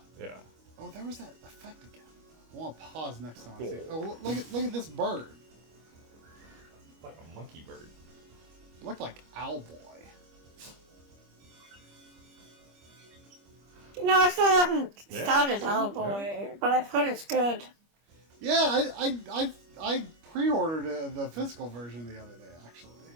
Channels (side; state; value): left; late; 25 ms